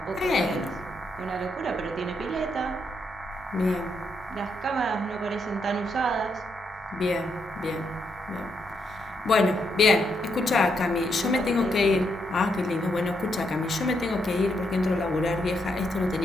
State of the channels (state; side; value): normal; both; correlation 0.78